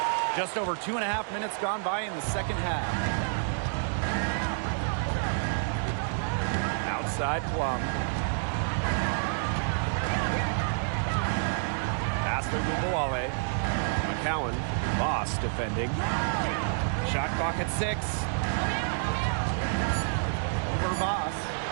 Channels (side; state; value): left; silent; digital silence